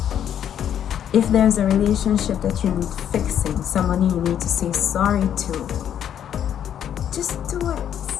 If there's a relationship that you need fixing, someone you need to say sorry to, just do it.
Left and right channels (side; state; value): right; quieter; 9.7 dB